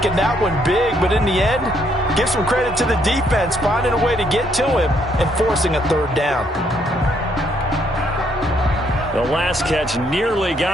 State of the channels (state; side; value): normal; both; correlation 0.71